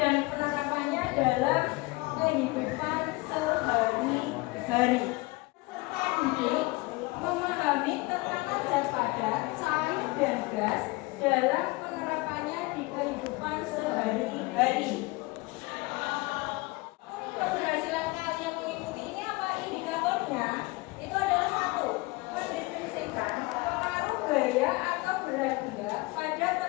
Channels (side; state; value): right; quieter; 23.8 dB